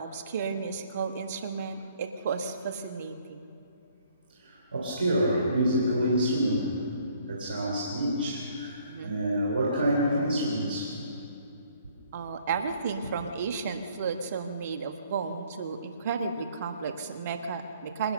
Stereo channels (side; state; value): both; inverted; correlation -0.62